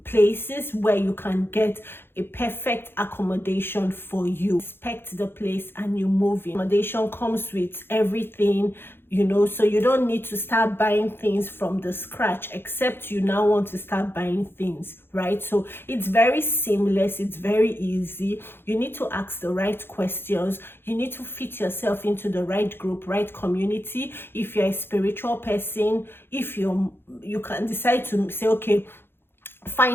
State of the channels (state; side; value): late; right; 0.11 ms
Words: places where you can get a perfect accommodation for you, inspect the place and you move in. Accommodation comes with everything, so you don't need to start buying things from the scratch, except you now want to start buying things, right? So it's very seamless, it's very easy. You need to ask the right questions, you need to fit yourself into the right group, right community. If you're a spiritual person, if you can decide to say, okay,